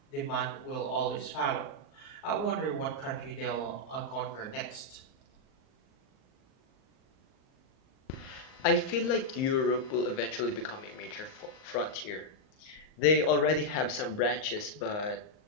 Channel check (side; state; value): right; late; 38 ms